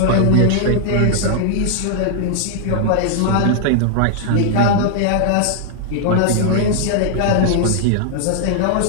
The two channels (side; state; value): both; different; correlation -0.01